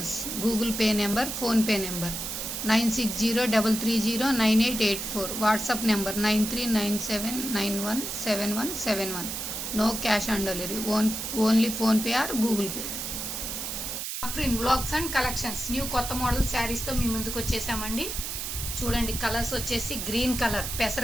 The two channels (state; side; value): noise; right; hiss, 5 dB below the sound